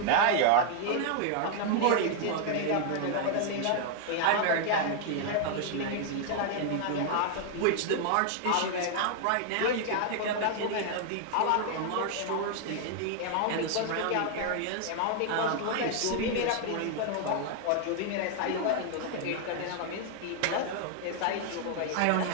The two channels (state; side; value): different; both; correlation 0.00